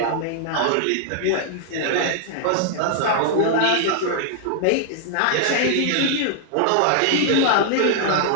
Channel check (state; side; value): different; both; correlation -0.01